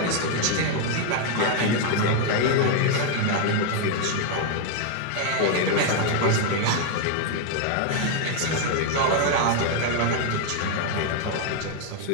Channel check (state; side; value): different; both; correlation 0.00